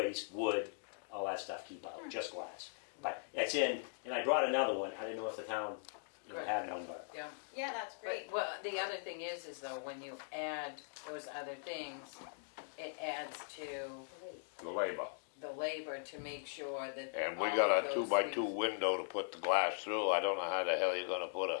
wood, all that stuff. Keep out, just glass. But it's in, and I brought another one. I didn't know if the town Good. had one, but Yeah. Yeah, that's great. But, well, the other thing is though, when you add those other things, it adds to The labor. the labor to make sure that. And we all got of a those 2x2 things- window to put the glass through. I don't know how the hell you're gonna put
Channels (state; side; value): silent; right; digital silence